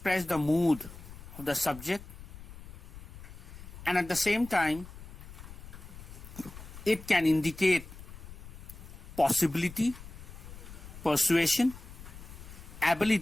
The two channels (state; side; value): noise; left; rumble, 15 dB below the sound